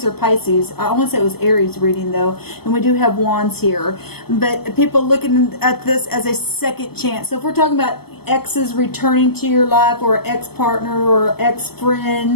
or Pisces. I want to say it was Aries reading though, and we do have wands here. But people looking at this as a second chance. So if we're talking about exes returning to your life, or ex-partner, or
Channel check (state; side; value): late; right; 0.96 ms